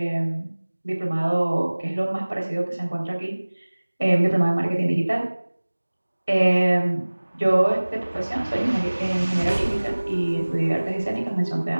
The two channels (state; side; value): inverted; both; correlation -1.00